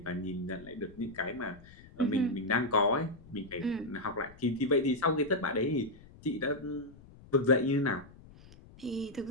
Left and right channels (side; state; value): left; noise; rumble, 21 dB below the sound